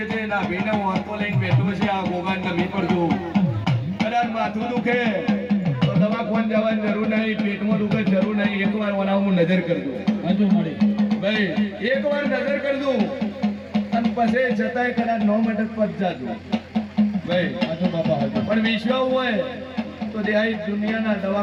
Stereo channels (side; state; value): both; identical; correlation 1.00